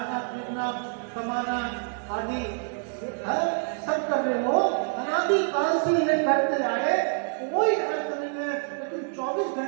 पीना, कमाना आदि सब कर रहे हो, अनादि काल से ये करते आए, कोई अर्थ नहीं है। लेकिन 24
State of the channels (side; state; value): left; silent; digital silence